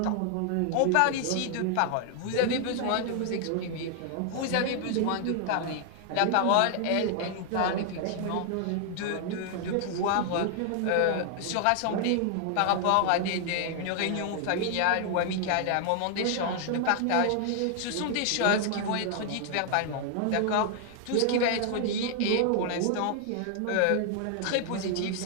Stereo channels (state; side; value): different; both; correlation 0.00